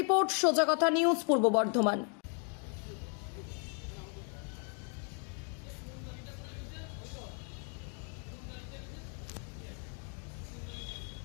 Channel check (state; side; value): quieter; right; 38.2 dB